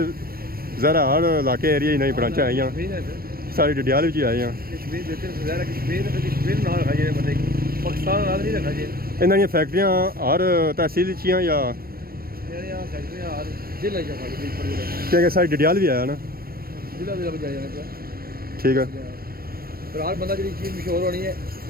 ज़रा हर इलाके एरिया ही नहीं ब्रांचा आई सारी डडियाल भी आई हैं इन्होंने फैक्ट्रियां हर तहसील या क्या सारी डडियाल भी आया ना ठीक है हर बंदा जी चीज़ मशहूर होनी है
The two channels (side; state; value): left; late; 0.44 ms